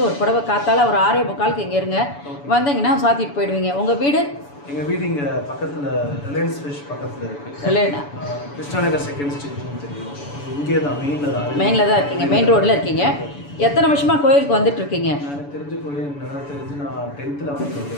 ஒரு புடவை காத்தால் ஒரு 6:45 இங்கே இருங்க. வந்தீங்கன்னா சாத்திட்டு போயிடுவீங்க. உங்கள் வீடு? எங்கள் வீடு இங்கே பக்கத்தில் ரிலையன்ஸ் ஃபிஷ் பக்கத்தில் இருக்குது. கிருஷ்ணாநகர் செகண்ட் ஸ்ட்ரீட்னு தெரியும். இங்கே தான் மெயினில் தான் இருக்கீங்க, மெயின் ரோட்டில் இருக்கீங்க. எத்தனை வருஷமாக கோயிலுக்கு வந்துட்டுருக்கீங்க? எனக்கு தெரிஞ்ச கோயில் நான் 10th வந்து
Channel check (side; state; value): right; late; 7.0 ms